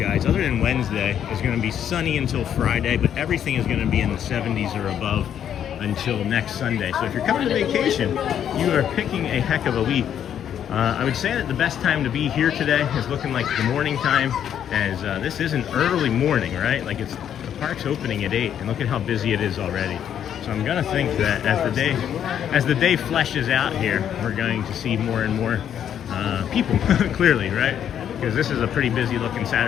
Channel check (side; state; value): right; quieter; 9.5 dB